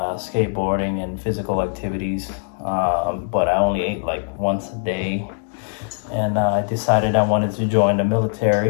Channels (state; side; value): silent; right; digital silence